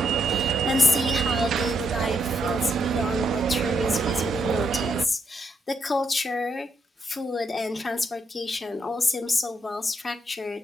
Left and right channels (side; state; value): both; normal; correlation 0.77